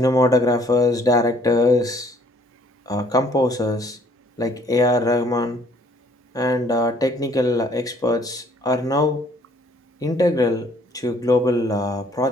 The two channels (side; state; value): both; normal; correlation 0.61